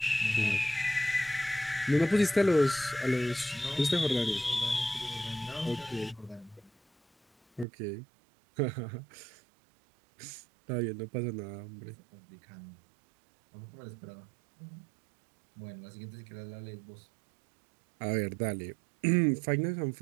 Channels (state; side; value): drops out; left; at 7.7 s